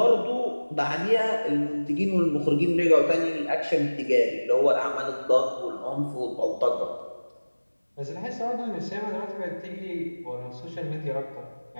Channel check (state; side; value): inverted; both; correlation -1.00